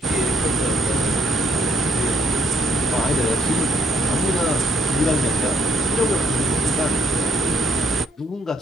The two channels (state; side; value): normal; both; correlation 0.72